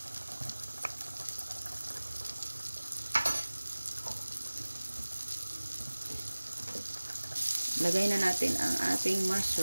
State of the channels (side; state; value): both; inverted; correlation -1.00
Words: Lagay na natin ang ating